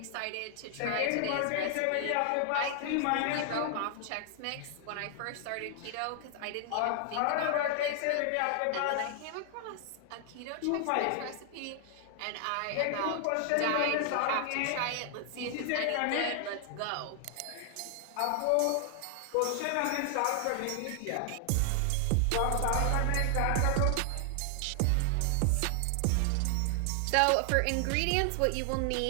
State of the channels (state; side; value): different; both; correlation 0.00